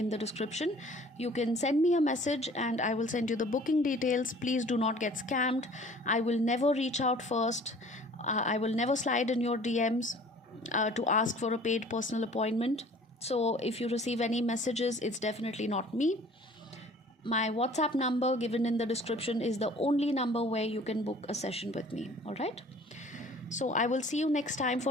the description. You can send me a message and I will send you the booking details. Please do not get scammed. I will never reach out first. I will never slide in your DMs to ask for a paid personal appointment. So if you receive any messages, it's definitely not me. My WhatsApp number given in the description is the only number where you can book a session with me. All right. So I will see you next time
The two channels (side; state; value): both; normal; correlation 0.50